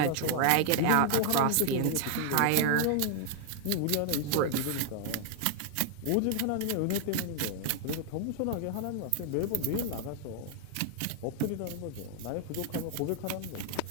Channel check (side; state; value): both; different; correlation 0.00